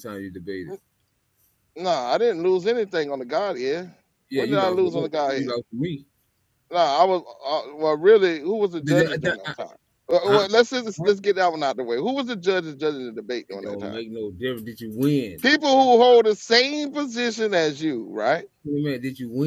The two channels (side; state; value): both; identical; correlation 1.00